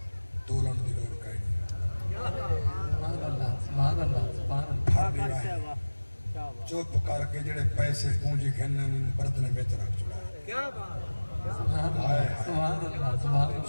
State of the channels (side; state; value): both; inverted; correlation -1.00